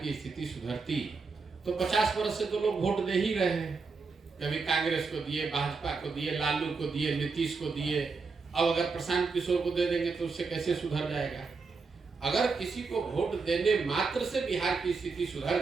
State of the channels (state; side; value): quieter; left; 4.5 dB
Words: की स्थिति सुधरती तो 50 वर्ष से तो लोग वोट दे ही रहे हैं। कभी कांग्रेस को दिए, भाजपा को दिए, लालू को दिए, नीतीश को दिए, अब अगर प्रशांत किशोर को दे देंगे तो उससे कैसे सुधर जाएगा? अगर किसी को वोट देने मात्र से बिहार की स्थिति सुधर